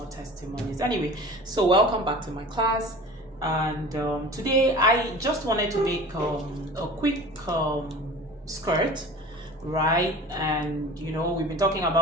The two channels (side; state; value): both; normal; correlation 0.39